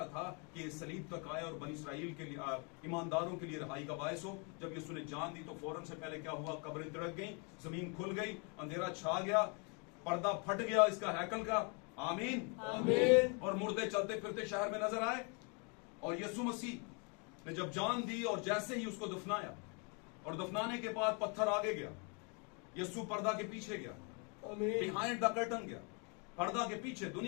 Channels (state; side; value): quieter; right; 34.7 dB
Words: था कि ये सलीब तक आए और बनी इस्राइल के लिए, ईमानदारों के लिए रहाई का बायस हो। जब यीशु ने जान दी तो फौरन से पहले क्या हुआ? कब्रें तिड़क गई, जमीन खुल गई, अंधेरा छा गया, पर्दा फट गया इसका हैकल का। आमीन। आमीन। और मुर्दे चलते फिरते शहर में नजर आए। और यीशु मसीह ने जब जान दी और जैसे ही उसको दफनाया, और दफनाने के बाद पत्थर आगे गया, यीशु पर्दा के पीछे गया, आमीन। बिहाइंड द कर्टन गया, पर्दा के पीछे।